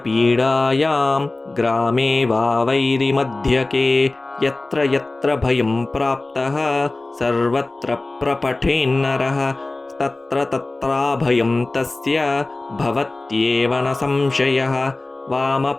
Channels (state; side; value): quieter; right; 3.0 dB